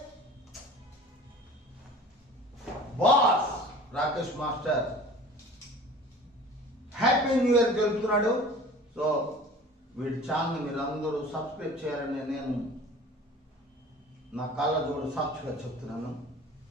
boss Rakesh master happy new year తెలుపుతున్నాడు. సో వీడి ఛానల్ మీరందరూ సబ్స్క్రైబ్ చేయాలని నేను నా కళ్ళ జోడు సాక్షిగా చెప్తున్నాను.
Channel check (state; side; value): normal; both; correlation 0.42